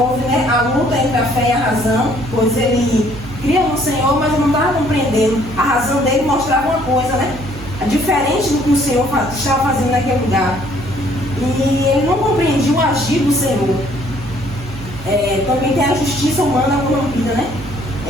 né, a luta entre a fé e a razão, pois ele cria no Senhor, mas não estava compreendendo. A razão dele mostrava uma coisa, né? Diferente do que o Senhor estava fazendo naquele lugar. E ele não compreendia o agir do Senhor. Também tem a justiça humana corrompida, né?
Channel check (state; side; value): noise; right; hum, 14 dB below the sound